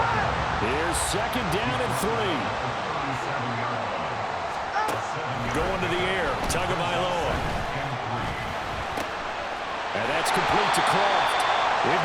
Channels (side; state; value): both; identical; correlation 1.00